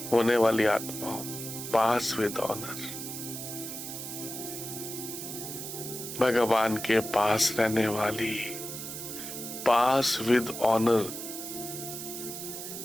होने वाली आत्मा हूं, पास विद ऑनर। भगवान के पास रहने वाली, पास विद ऑनर।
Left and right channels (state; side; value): noise; right; hiss, 8 dB below the sound